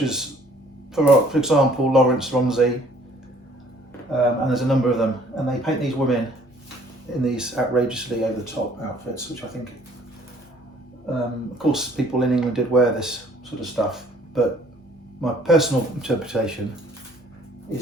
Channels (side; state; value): both; normal; correlation 0.58